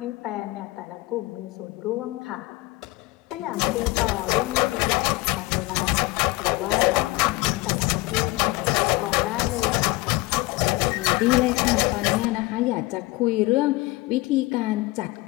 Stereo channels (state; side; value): quieter; right; 21.4 dB